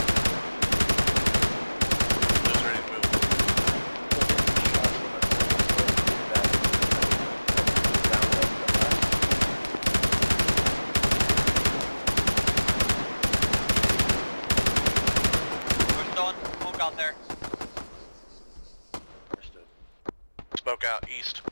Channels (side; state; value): both; inverted; correlation -1.00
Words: Just ready to move. We're throwing smoke out there. Understood. Smoke out east.